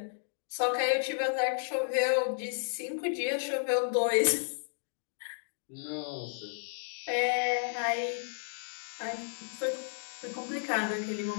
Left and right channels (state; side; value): silent; right; digital silence